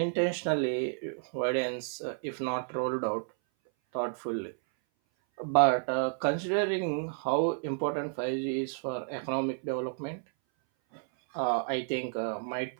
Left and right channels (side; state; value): left; silent; 57 dB below the other